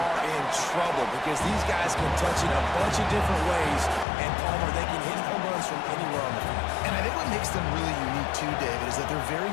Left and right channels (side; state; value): right; drops out; at 4.0 s